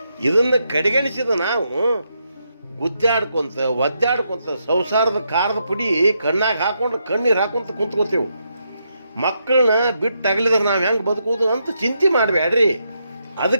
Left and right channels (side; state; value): both; inverted; correlation -0.81